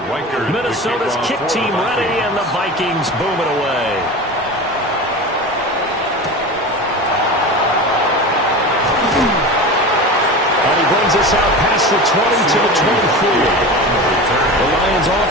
Riker, Minnesota's kick team ready, and the Vikings boom it away. And he brings us out past the 20 to the 24. The Lions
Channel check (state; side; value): normal; both; correlation 0.30